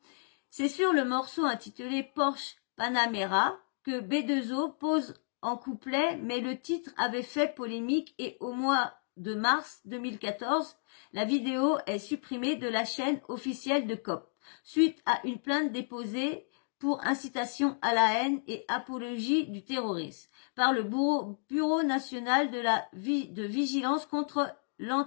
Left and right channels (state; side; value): silent; right; digital silence